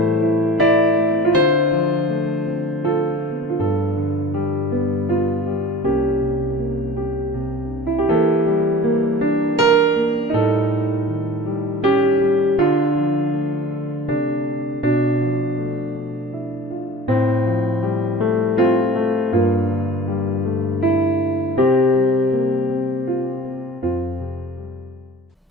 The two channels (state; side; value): normal; both; correlation 0.42